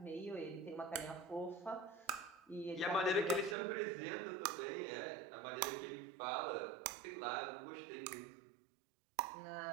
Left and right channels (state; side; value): drops out; left; at 3.6 s